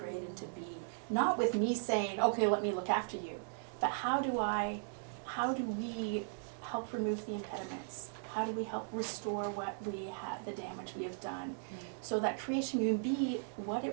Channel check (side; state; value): left; silent; digital silence